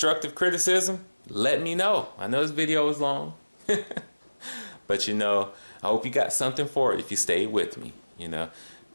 criticism, let me know. I know this video is long, but you know, I hope you got something for it if you stayed with me. You know,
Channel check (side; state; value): both; inverted; correlation -1.00